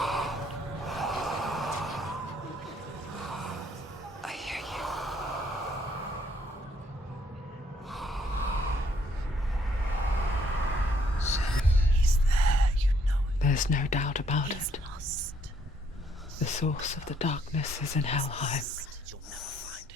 I hear you. He's there, you know it. There's no doubt about He's it. lost. The source of the darkness is in Helheim,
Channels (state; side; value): normal; both; correlation 0.68